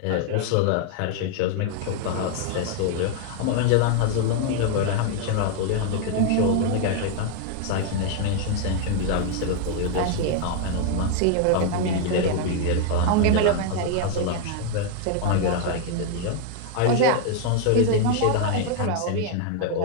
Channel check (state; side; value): different; both; correlation 0.00